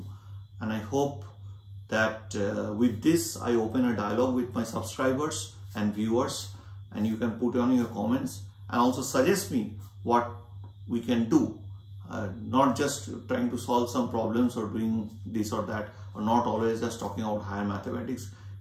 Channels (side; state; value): both; identical; correlation 1.00